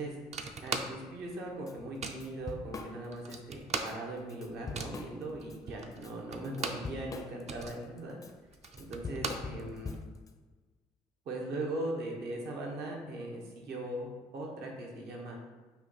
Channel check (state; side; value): normal; both; correlation 0.51